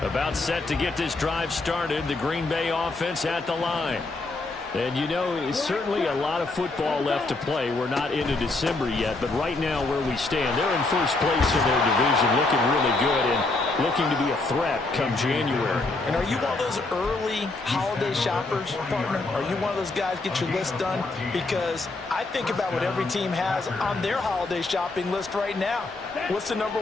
About set to get this drive started. The Green Bay offense at the line. And you know, certainly a lot of football left to play. We're not into December yet, but right now where we stand, they're in first place in their division, looking really good and looking to be a threat come January. And are you one of those early holiday shoppers, partner? Are you one of those guys get your list done? Because I think about what every team has on their holiday shopping list right now. What's the number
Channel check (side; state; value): right; quieter; 3.3 dB